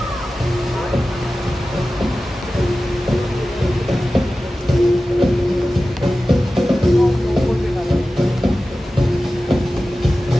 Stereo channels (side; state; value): both; normal; correlation 0.95